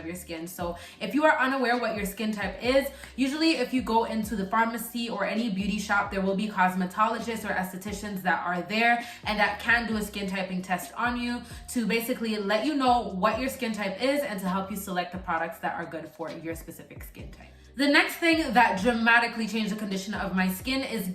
your skin. So if you are unaware what your skin type is, usually if you go into the pharmacy or any beauty shop, there will be cosmetologists or estheticians that are there and that can do a skin typing test on you to basically let you know what your skin type is and to help you select the products that are good for your specific skin type. The next thing that dramatically changed the condition of my skin is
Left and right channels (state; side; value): identical; both; correlation 1.00